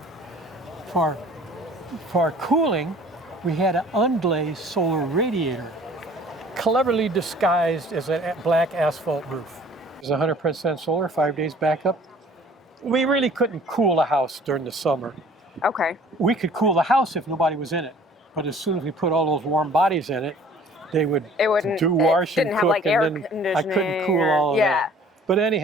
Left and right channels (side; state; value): both; normal; correlation 0.51